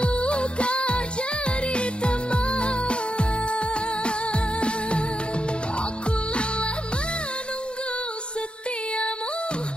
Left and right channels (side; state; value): right; late; 0.055 ms